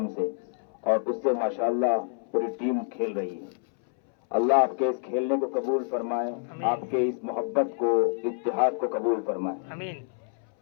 سے، اور اس سے ماشاءاللہ پوری ٹیم کھیل رہی ہے۔ اللہ آپ کے اس کھیلنے کو قبول فرمائے، آپ کے اس محبت کو اتحاد کو قبول فرمائے، آمین۔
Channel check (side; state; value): right; silent; 60 dB below the other